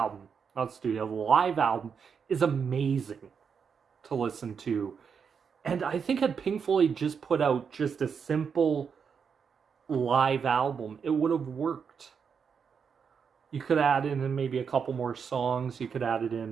not studio, the live album is amazing to listen to. And I think had Pink Floyd just put out just a simple live album, it would have worked. You could add in maybe a couple more songs. You could add it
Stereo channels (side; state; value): left; quieter; 6.5 dB